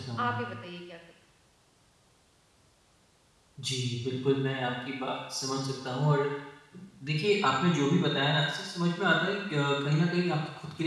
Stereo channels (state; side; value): identical; both; correlation 1.00